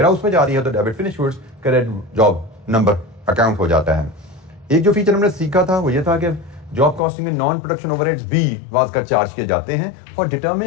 warehouse में जा रही है तो debit finish goods credit job number account हो जाता है। एक जो फीचर हमने सीखा था वो ये था कि जॉब कॉस्टिंग में नॉन प्रोडक्शन ओवरहेड्स भी वाज कर चार्ज किए जाते हैं फॉर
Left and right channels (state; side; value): drops out; right; at 7.0 s